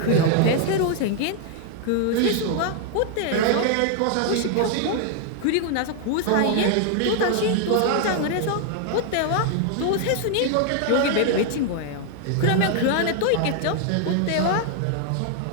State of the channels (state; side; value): different; both; correlation 0.00